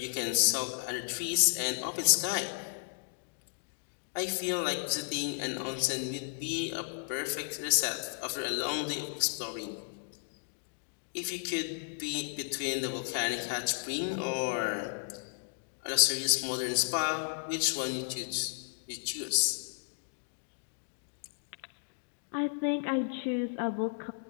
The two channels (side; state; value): right; silent; digital silence